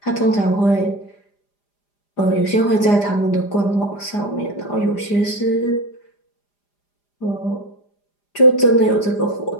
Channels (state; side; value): late; right; 4.9 ms